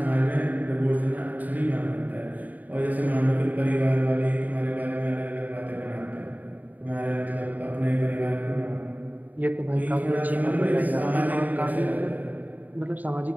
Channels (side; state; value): left; late; 0.081 ms